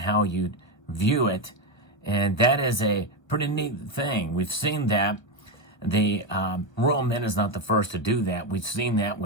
you view it. And that is a pretty neat thing. We've seen that. The Royal Mint is not the first to do that. We've seen that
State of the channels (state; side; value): late; right; 1.0 ms